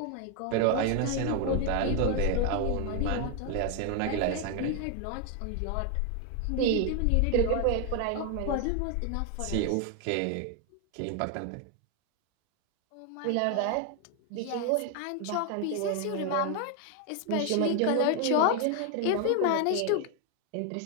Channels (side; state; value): both; different; correlation 0.01